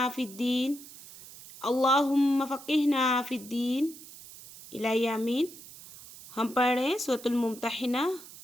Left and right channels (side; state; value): right; noise; hiss, 17 dB below the sound